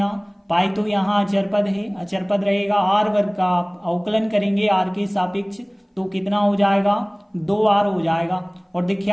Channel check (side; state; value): both; identical; correlation 1.00